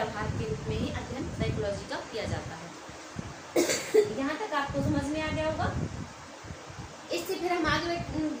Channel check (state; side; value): identical; both; correlation 1.00